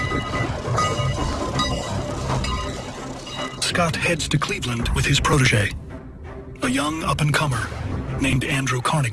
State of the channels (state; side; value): identical; both; correlation 1.00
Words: Scott heads to Cleveland with his protege, a young up-and-comer named Andrew